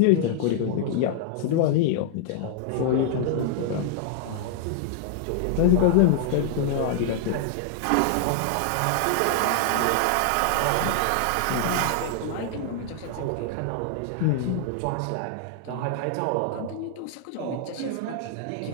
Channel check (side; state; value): both; different; correlation 0.00